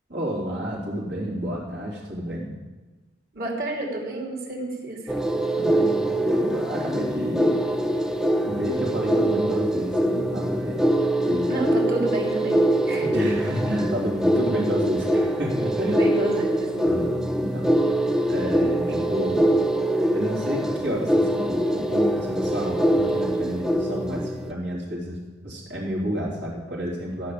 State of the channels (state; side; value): normal; both; correlation 0.82